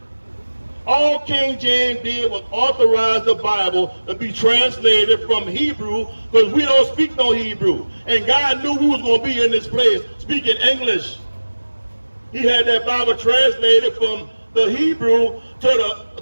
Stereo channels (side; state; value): both; inverted; correlation -1.00